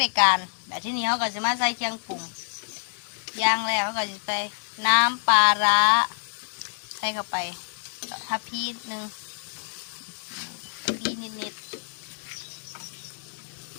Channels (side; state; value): right; silent; digital silence